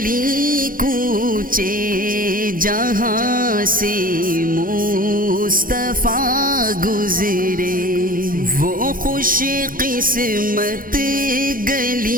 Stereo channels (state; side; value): late; left; 0.41 ms